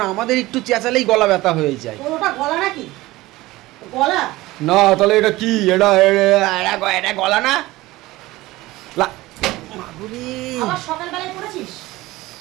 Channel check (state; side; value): quieter; left; 18.8 dB